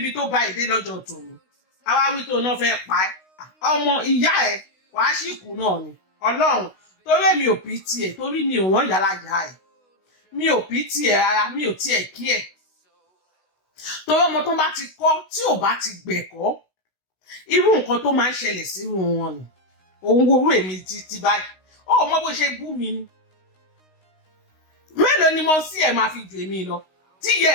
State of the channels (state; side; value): late; right; 16 ms